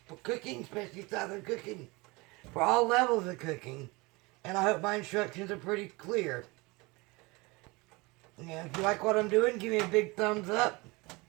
cooking, especially Southern cooking, for all levels of cooking. And I hope my instructions are pretty clear. And if you like what I'm doing, give me a big thumbs up.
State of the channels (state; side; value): quieter; left; 24.8 dB